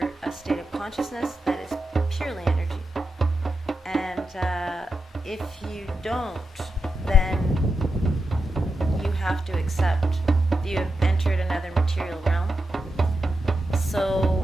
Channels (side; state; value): both; normal; correlation 0.88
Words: a state of consciousness that is purely energy. And if you don't, then you have to accept that you have entered another material realm. So